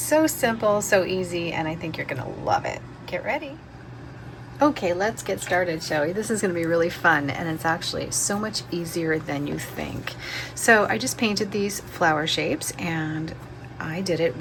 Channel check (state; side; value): identical; both; correlation 1.00